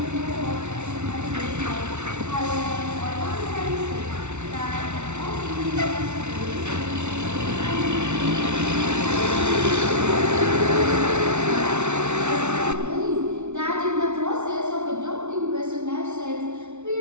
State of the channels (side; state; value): left; late; 0.82 ms